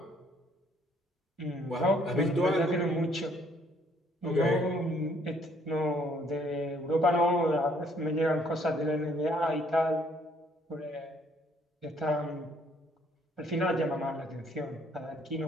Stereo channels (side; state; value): both; normal; correlation 0.65